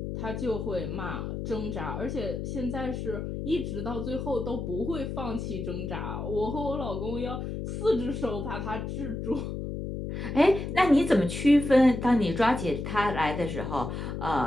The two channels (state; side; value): noise; left; hum, 5 dB below the sound